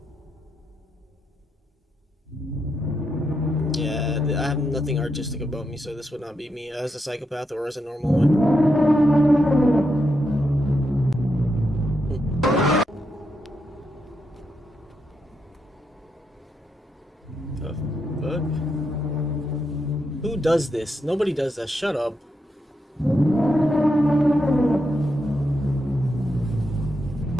Yeah, I have nothing artistic about me, so this would not be me as a psychopath or as a normal one. The fuck? Who does this? Nobody does that. Shut up.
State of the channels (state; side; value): normal; both; correlation 0.83